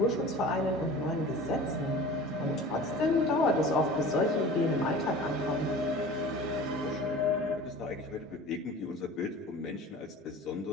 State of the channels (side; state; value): both; normal; correlation 0.40